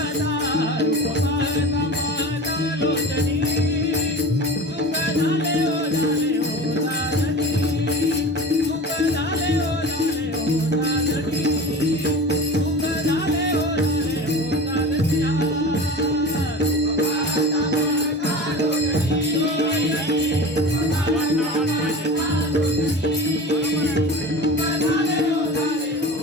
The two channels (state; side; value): normal; both; correlation 0.34